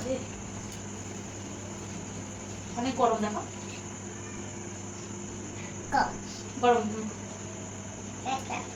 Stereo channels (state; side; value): identical; both; correlation 1.00